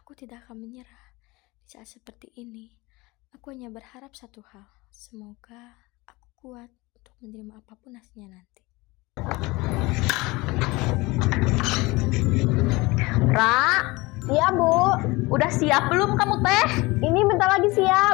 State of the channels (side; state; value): right; quieter; 22.8 dB